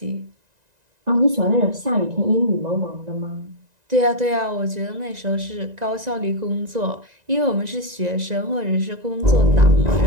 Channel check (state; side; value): late; left; 1.9 ms